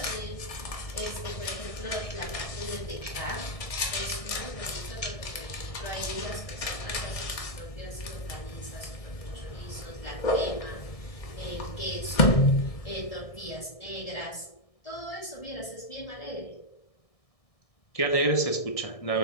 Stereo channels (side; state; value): right; late; 1.6 ms